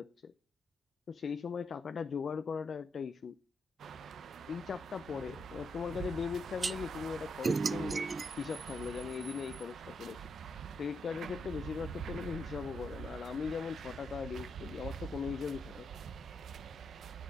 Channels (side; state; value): both; normal; correlation 0.80